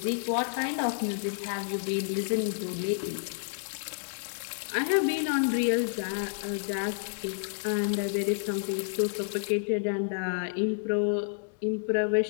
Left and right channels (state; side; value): silent; right; digital silence